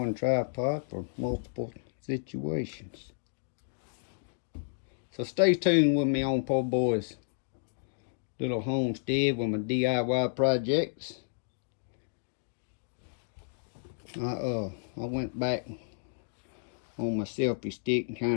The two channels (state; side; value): silent; right; digital silence